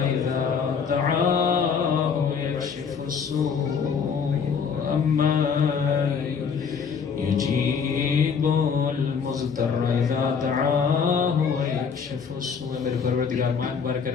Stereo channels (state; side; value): quieter; right; 6.2 dB